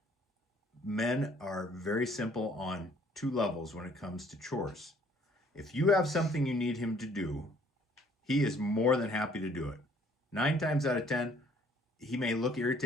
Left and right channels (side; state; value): both; normal; correlation 0.60